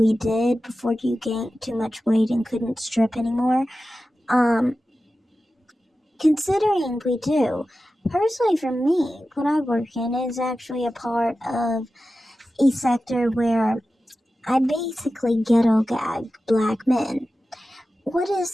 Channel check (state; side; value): normal; both; correlation 0.94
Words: did before you gained too much weight and couldn't strip anymore. Considering we do, personally for me, what I work in is actually a part of a sector where I basically ghetto gag black men. What